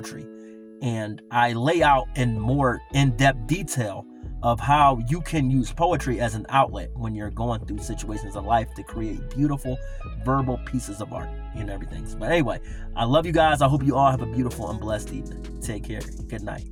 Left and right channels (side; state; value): both; identical; correlation 1.00